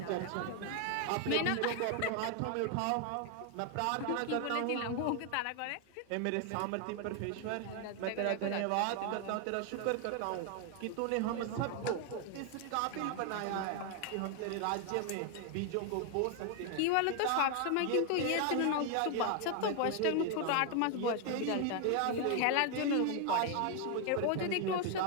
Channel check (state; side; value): different; both; correlation 0.00